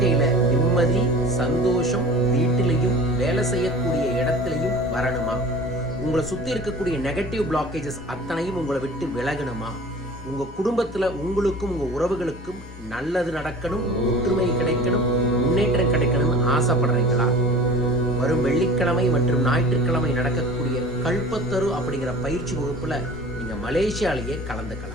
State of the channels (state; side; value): normal; both; correlation 0.41